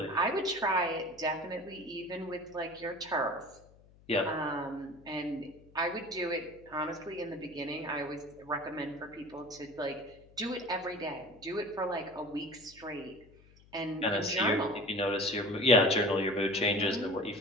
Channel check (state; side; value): noise; left; hum, 26 dB below the sound